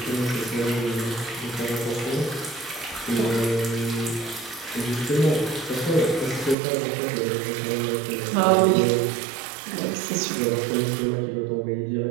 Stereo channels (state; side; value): drops out; left; at 6.6 s